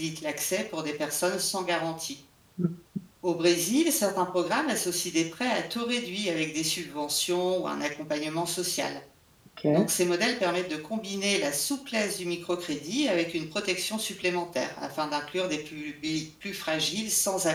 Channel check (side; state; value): both; identical; correlation 1.00